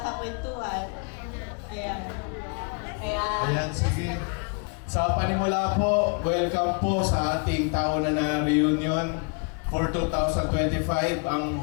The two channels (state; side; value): quieter; right; 36.2 dB